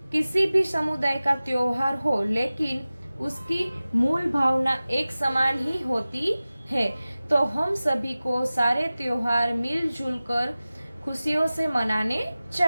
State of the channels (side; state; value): both; inverted; correlation -0.97